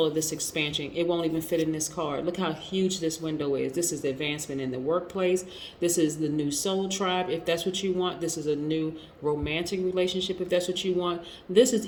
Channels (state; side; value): identical; both; correlation 1.00